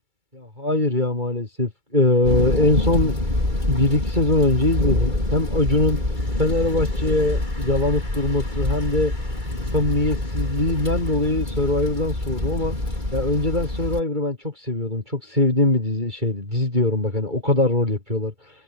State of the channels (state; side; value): late; left; 2.3 ms